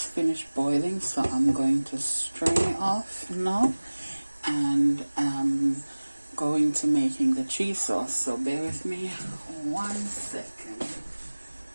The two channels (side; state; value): both; inverted; correlation -1.00